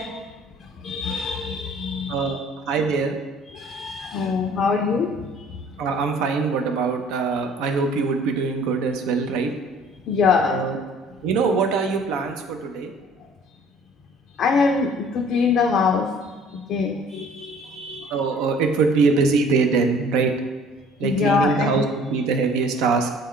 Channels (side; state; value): both; normal; correlation 0.52